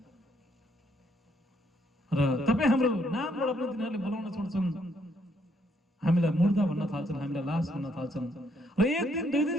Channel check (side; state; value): both; normal; correlation 0.71